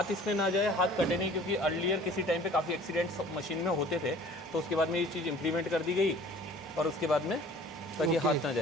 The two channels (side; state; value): both; normal; correlation 0.48